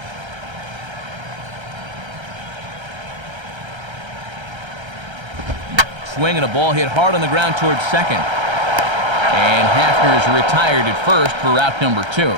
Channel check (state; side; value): late; left; 1.3 ms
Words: Swing and a ball hit hard on the ground towards second. And Hafner is retired at first for out number